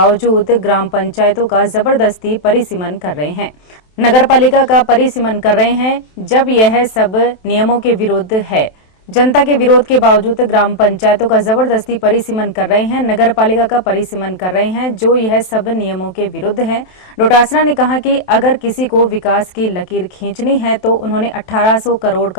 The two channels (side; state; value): right; late; 27 ms